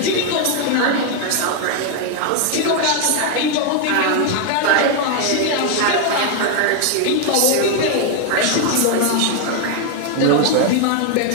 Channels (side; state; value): both; different; correlation 0.01